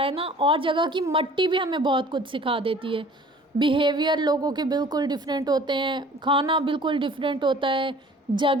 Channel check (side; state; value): both; normal; correlation 0.49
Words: ना, और जगह की मिट्टी भी हमें बहुत कुछ सिखा देती है। बिहेवियर लोगों के बिल्कुल डिफरेंट होते हैं, खाना बिल्कुल डिफरेंट होता है,